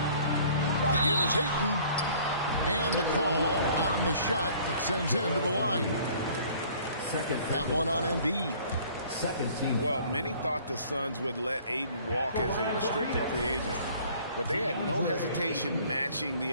Here's Ayton. And the call on the shot that sends him to the line. Second. That one on Embiid. Second team. Well, many thought the Suns would let Ayton walk as a restricted free agent, but they had no hesitation matching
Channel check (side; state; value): both; inverted; correlation -0.54